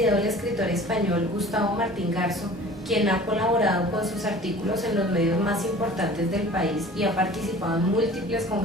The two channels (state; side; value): normal; both; correlation 0.44